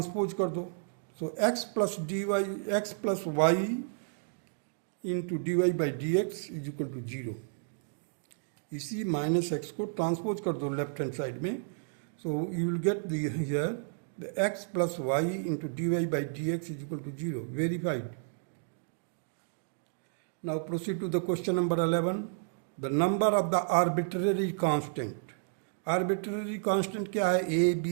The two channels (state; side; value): silent; left; digital silence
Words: कर दो, so x plus d y, x plus y into d y by d x is equal to zero. इसी minus x को transpose कर दो left hand side में, so you will get here the x plus y into d y by d x is equal to zero, verified. Now proceed to the question number 11. The number of the arbitrary constant. Arbitrary constant क्या है, A,